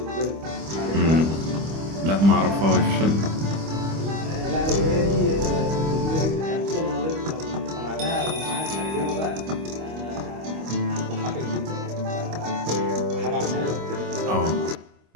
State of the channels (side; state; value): left; late; 25 ms